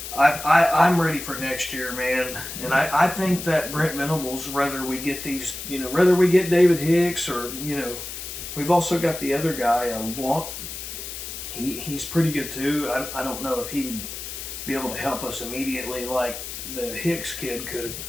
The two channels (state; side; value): noise; left; hiss, 8 dB below the sound